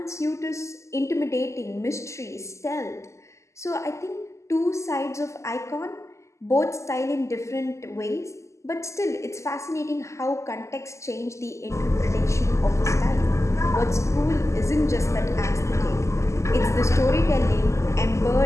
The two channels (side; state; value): right; late; 0.14 ms